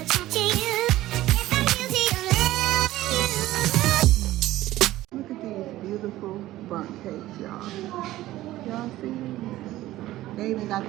at these beautiful bundt cakes, y'all. Y'all see these? They even got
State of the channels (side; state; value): left; quieter; 15.8 dB